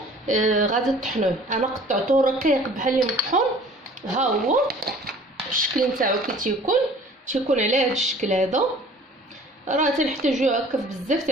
غادي تطحنوه، انا قطعته رقيق بحال المطحون. ها هو الشكل نتاعو كي تيكون على هذا الشكل هذا. راه تنحتاجو هكا بزاف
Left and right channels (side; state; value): both; normal; correlation 0.49